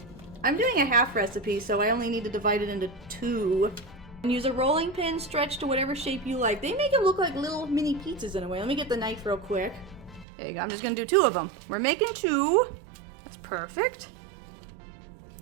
I'm doing a half recipe, so I only need to divide it into 2. And use a rolling pin, stretch to whatever shape you like. They make them look like little mini pizzas in a way. Let me get the knife real quick. There you go. I'm just gonna do 2 of them. We're making 2. That's perfect.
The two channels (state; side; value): drops out; left; at 10.2 s